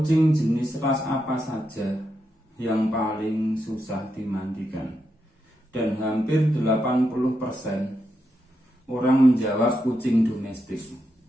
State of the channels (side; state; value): both; normal; correlation 0.84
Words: jenis ras apa saja yang paling susah dimandikan? Dan hampir 80% orang menjawab kucing domestik